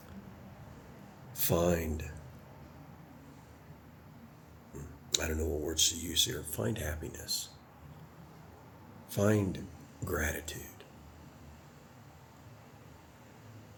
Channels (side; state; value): both; identical; correlation 1.00